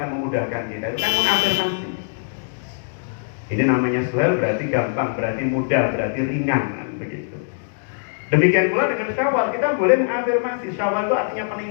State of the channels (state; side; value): silent; right; digital silence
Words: memudahkan kita. Itu kan mengafirmasi. Ini namanya Suhail, berarti gampang, berarti mudah, berarti ringan, begitu. Demikian pula dengan Syawal, kita boleh mengafirmasi. Syawal itu artinya